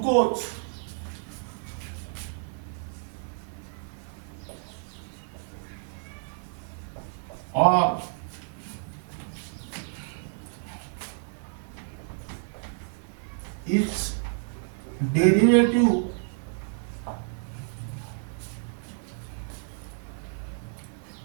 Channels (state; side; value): silent; left; digital silence